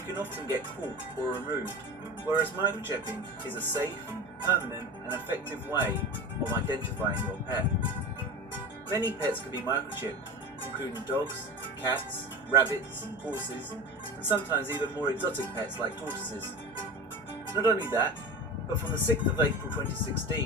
often get caught or removed, whereas microchipping is a safe, permanent and effective way of identifying your pet. Many pets can be microchipped, including dogs, cats, rabbits, horses, and sometimes even more exotic pets like tortoises. Not only that, but from the 6th of April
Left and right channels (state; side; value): normal; both; correlation 0.30